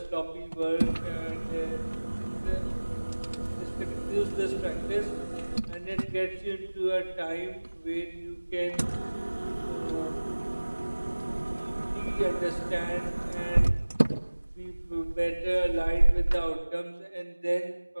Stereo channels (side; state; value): both; inverted; correlation -1.00